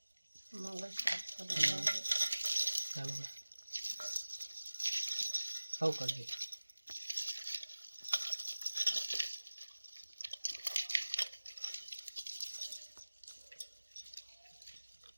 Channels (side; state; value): both; inverted; correlation -1.00